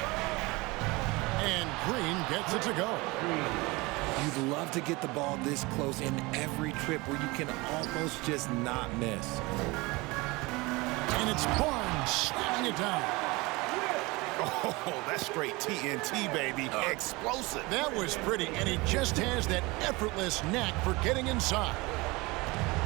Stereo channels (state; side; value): quieter; left; 23.7 dB